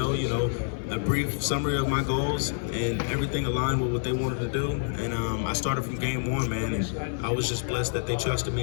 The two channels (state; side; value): silent; right; 60 dB below the other